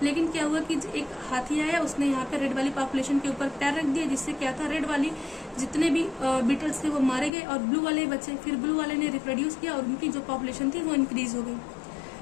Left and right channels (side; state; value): right; drops out; at 7.3 s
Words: लेकिन क्या हुआ कि एक हाथी आया, उसने यहाँ पे रेड वाली पॉपुलेशन के ऊपर पैर रख दिया, जिससे क्या था रेड वाली जितने भी बीटल्स थे वो मारे गए और ब्लू वाले बचे। फिर ब्लू वाले ने रिप्रोड्यूस किया और उनकी जो पॉपुलेशन थी वो इंक्रीज हो गई।